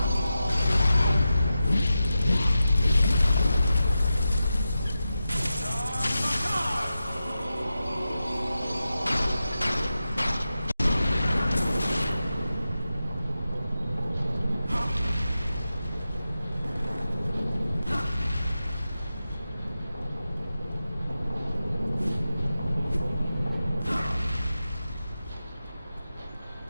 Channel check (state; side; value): inverted; both; correlation -0.92